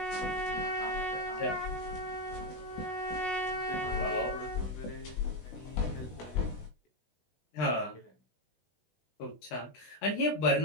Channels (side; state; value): right; late; 16 ms